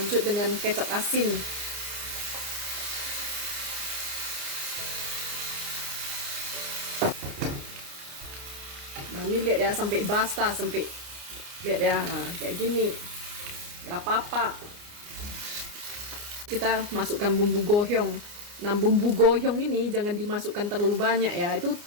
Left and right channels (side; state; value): left; late; 29 ms